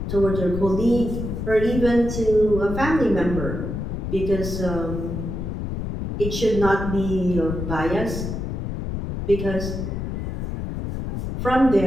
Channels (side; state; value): left; noise; rumble, 4 dB below the sound